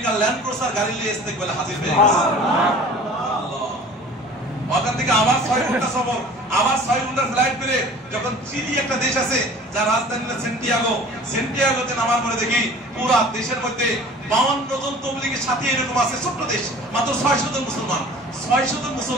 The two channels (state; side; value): normal; both; correlation 0.45